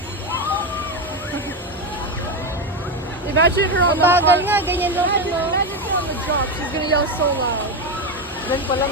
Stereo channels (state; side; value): normal; both; correlation 0.13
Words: Imagine her on Ang the bagal front. nga, ganyan lang siya, no? Imagine her on the drop. She's gonna yell so loud. Yan pa lang,